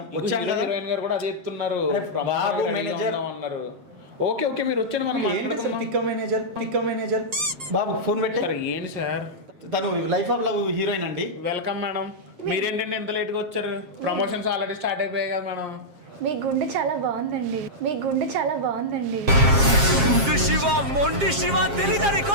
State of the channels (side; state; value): left; late; 7.4 ms